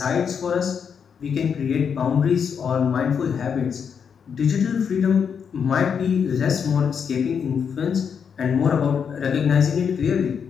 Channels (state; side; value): quieter; right; 6.9 dB